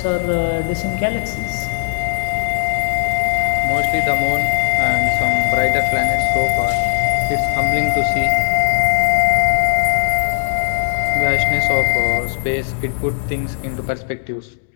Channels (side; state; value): right; silent; digital silence